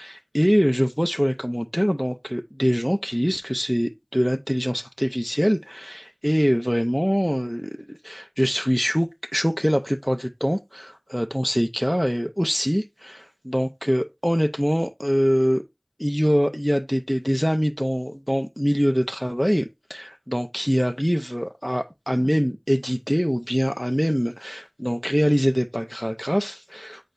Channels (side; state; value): both; identical; correlation 1.00